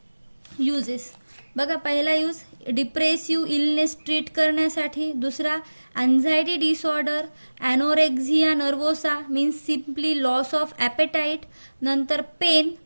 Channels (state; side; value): inverted; both; correlation -1.00